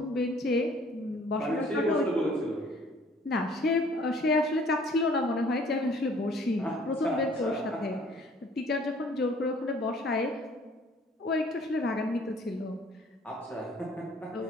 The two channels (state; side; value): normal; both; correlation 0.56